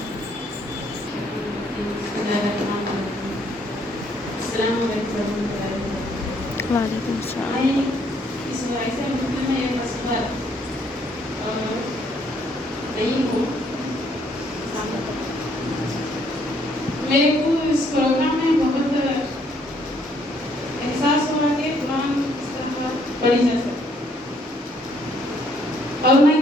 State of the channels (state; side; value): normal; both; correlation 0.67